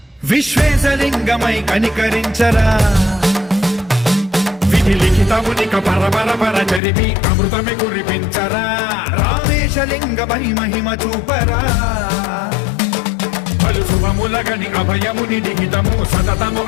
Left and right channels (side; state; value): right; drops out; at 6.8 s